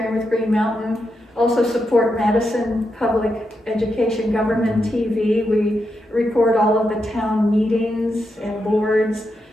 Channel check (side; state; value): both; normal; correlation 0.85